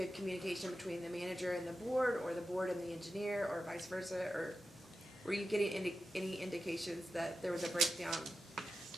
communication between the manager and the board, or the board and the engineer, or vice versa? Or were you getting any indications that there was a breakdown?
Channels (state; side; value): noise; left; hum, 28 dB below the sound